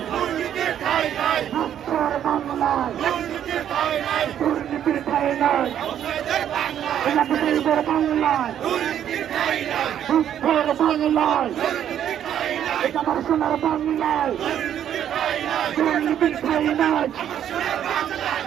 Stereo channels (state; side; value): quieter; left; 10.1 dB